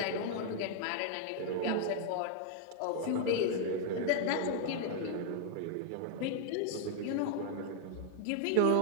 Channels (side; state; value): both; different; correlation 0.00